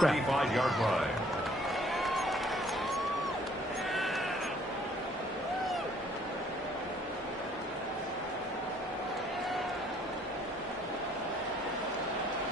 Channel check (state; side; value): normal; both; correlation 0.60